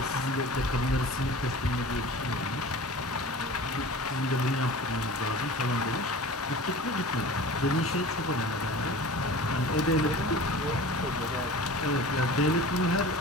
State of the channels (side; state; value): both; normal; correlation 0.39